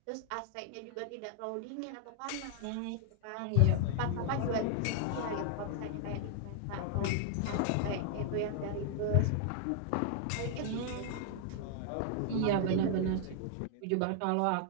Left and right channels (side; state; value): both; different; correlation 0.00